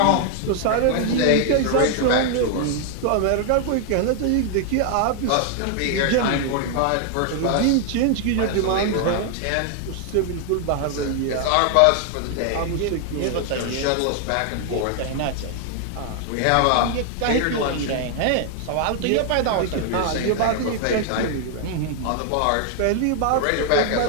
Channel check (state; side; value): different; both; correlation 0.00